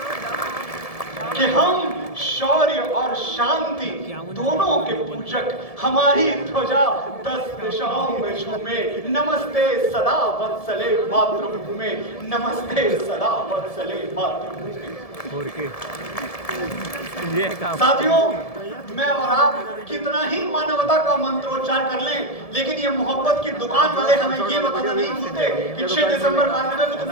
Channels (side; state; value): right; late; 1.7 ms